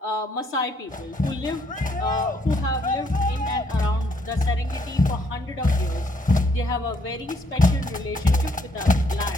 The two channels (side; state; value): both; normal; correlation 0.70